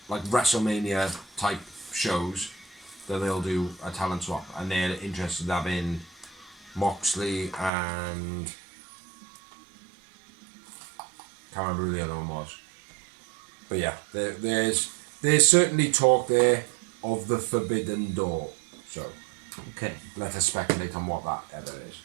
like WrestleMania type shows that they'll do a talent swap, and they're interested in having Moxley and can't remember who the other one was. But yeah, there's certainly talk there of the Forbidden Door. So okay, let us speculate on what that ever is.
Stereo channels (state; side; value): drops out; left; at 7.7 s